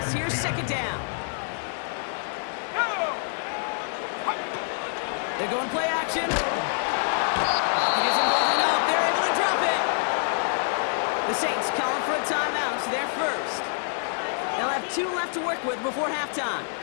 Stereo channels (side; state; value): right; silent; 61 dB below the other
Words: Here's 2nd down. They're going play action. Pocket isn't holding up. They're able to drop it. The Saints calling for a timeout. They're first. They'll have 2 left to work with before halftime.